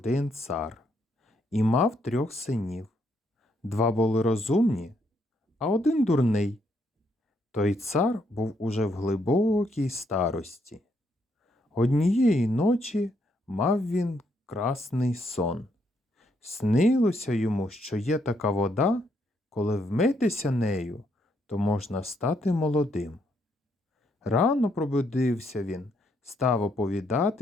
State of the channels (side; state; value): both; normal; correlation 0.74